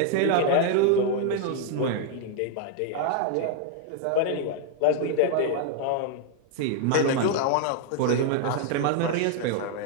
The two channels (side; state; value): both; different; correlation 0.00